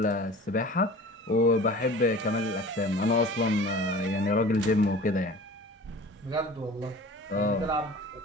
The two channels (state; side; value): normal; both; correlation 0.41